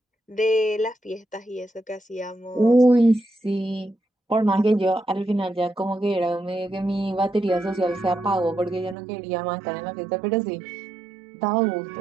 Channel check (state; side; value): drops out; left; at 9.0 s